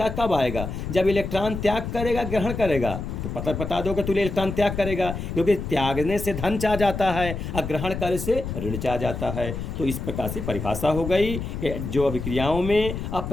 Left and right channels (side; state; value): left; noise; rumble, 6 dB below the sound